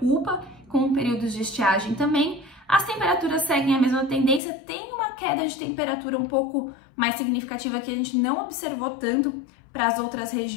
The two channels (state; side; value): drops out; right; at 4.4 s